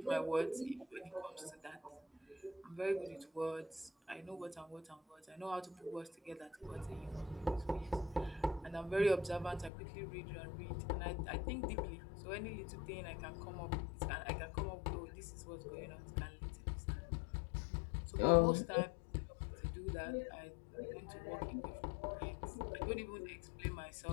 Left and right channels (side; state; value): right; drops out; at 9.7 s